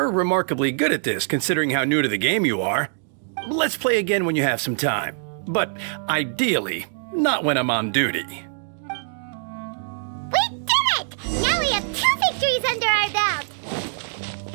remarkably good at this, considering how new to the game you are. Let's play again when you have some time. But ideally, not when I'm on duty. We did it! Now we have 2 victories under our belt!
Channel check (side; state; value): left; silent; 63 dB below the other